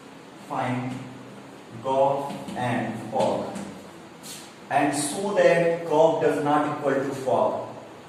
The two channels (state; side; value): identical; both; correlation 1.00